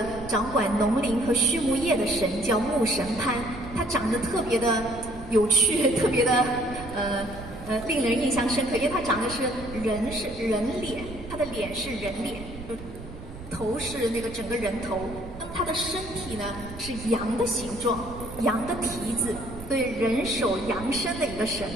掌管农林和畜牧业的神叫牧神潘，他长得特别的有趣，特别的令人印象深刻，因为他长得是人脸，他的脸是人脸，头是那个整个人头，那么他的身体呢是羊的形状，羊的蹄子，所以人首羊身的一个神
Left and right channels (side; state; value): right; noise; rumble, 13 dB below the sound